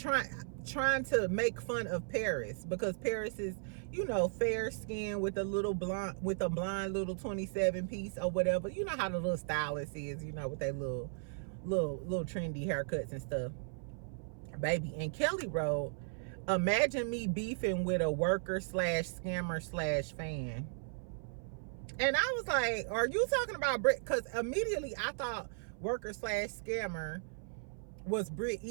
to make fun of Paris, because Paris is, you know, fair skin with a blonde little 27 piece or whatever. You know how the little stylist is, you know, with their little trendy haircuts and stuff, baby. And Kelli wrote, imagine me beefing with a worker / scammer / fan. And I was like, are you talking about Brit? Because immediately I thought worker / scammer was Brit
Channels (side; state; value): left; silent; 54 dB below the other